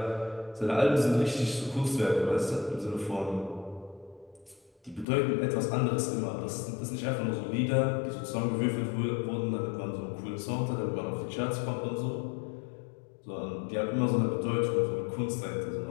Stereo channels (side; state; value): right; drops out; at 5.1 s